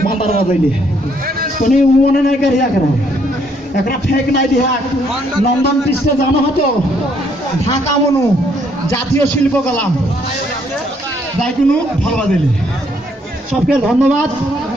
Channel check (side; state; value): both; normal; correlation 0.69